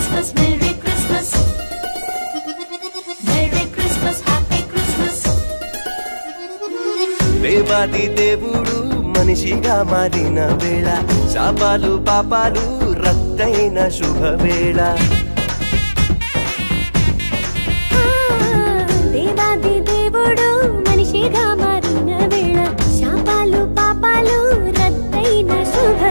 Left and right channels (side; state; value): both; inverted; correlation -1.00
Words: Merry Christmas. Merry Christmas, Happy Christmas. దేవాది దేవుడు మనిషిగా మారిన వేళ, శాపాలు పాపాలు రద్దయిన శుభవేళ. దేవాది దేవుడు మనిషిగా మారిన వేళ, శాపాలు పాపాలు రద్దయిన